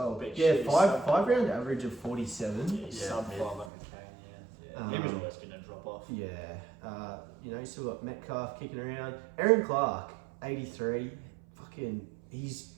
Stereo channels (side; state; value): left; drops out; at 3.7 s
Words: been Yeah, shit. five round average of 47. Yeah, he's Yeah, sub yeah. 5 on McCain, yeah. He was always going to drop off. Yeah, you know, you still got Metcalf kicking around. Aaron Clark, 83. Fucking, he's